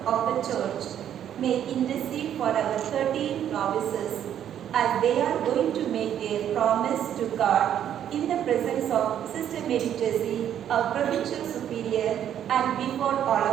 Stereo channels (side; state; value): left; quieter; 10.1 dB